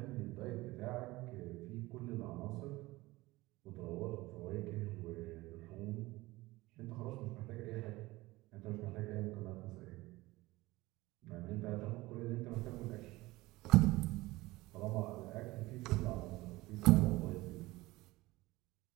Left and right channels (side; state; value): left; quieter; 19.8 dB